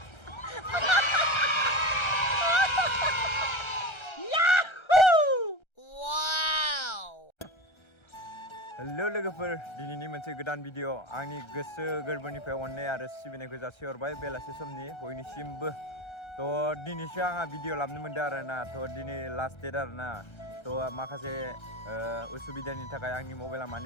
Halo logoफोर दिनैनि मोनसे गोदान भिडिअ आंनि गोसो गोरबोनिफ्राय अननाय आरो सिबिनायखौ जासिहरबाय बेलासे समनि बयनिसिमबो थ' दिनैसो आंहा भिडिअ लाबनो मोनदों आरोना थ' दिनै लास्ट डेट आरोना थ' माखासे उसुबिदानि थाखाय आंनि मबाइला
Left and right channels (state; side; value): late; right; 1.3 ms